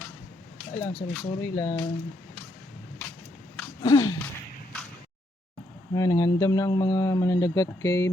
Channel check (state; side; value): normal; both; correlation 0.76